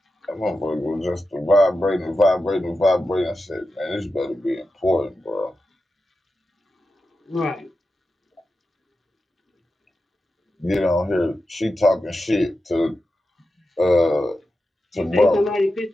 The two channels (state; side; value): normal; both; correlation 0.91